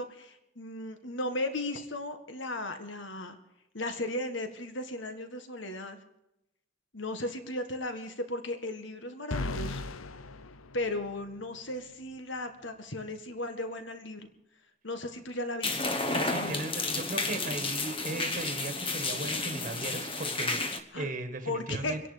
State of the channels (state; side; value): normal; both; correlation 0.08